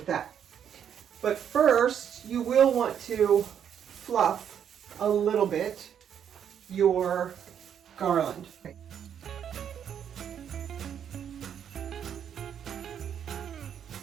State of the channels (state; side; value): quieter; left; 8.7 dB